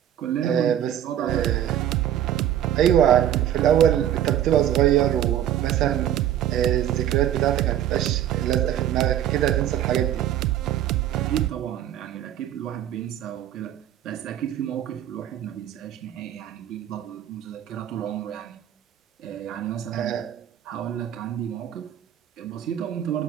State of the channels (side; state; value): left; quieter; 11.1 dB